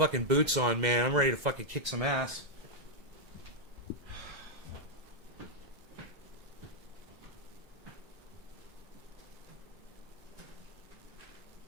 boots on, man. I'm ready to fucking kick some ass.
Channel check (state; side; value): late; left; 2.1 ms